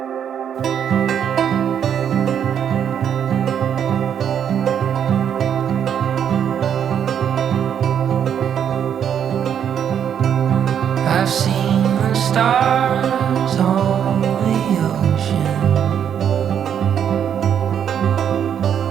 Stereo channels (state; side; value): quieter; left; 8.7 dB